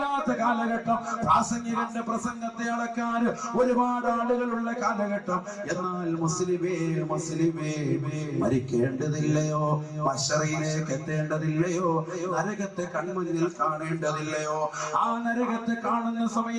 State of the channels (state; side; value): identical; both; correlation 1.00